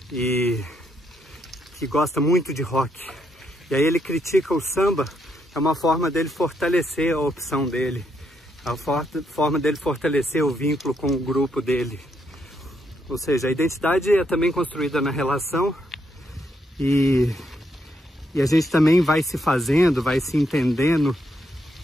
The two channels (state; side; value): normal; both; correlation 0.77